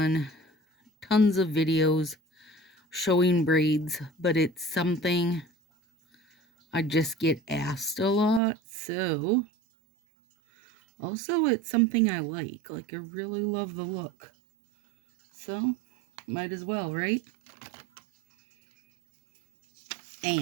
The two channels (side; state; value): left; drops out; at 8.4 s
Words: tons of videos showing braids, but it's something I just get asked a lot. So, also, it's something I like. Like, I really love the look. So, might as well, right?